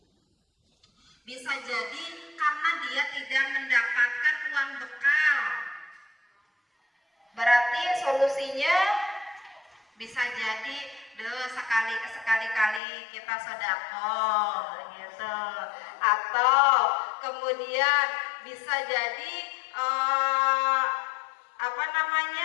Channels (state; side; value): drops out; right; at 12.8 s